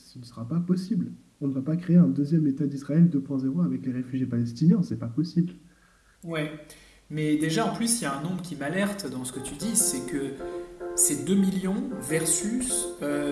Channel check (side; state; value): both; identical; correlation 1.00